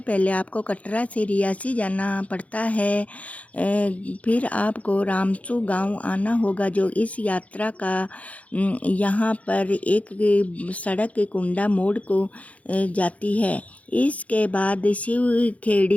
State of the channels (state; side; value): late; right; 0.067 ms